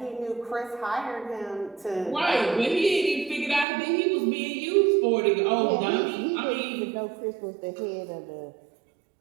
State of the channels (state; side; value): drops out; left; at 3.7 s